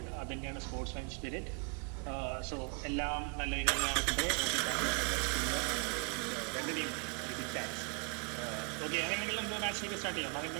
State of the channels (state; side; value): quieter; left; 34.5 dB